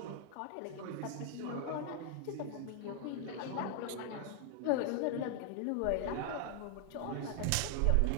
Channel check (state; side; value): different; both; correlation 0.00